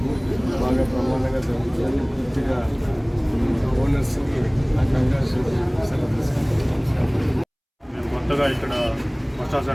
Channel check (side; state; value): both; identical; correlation 1.00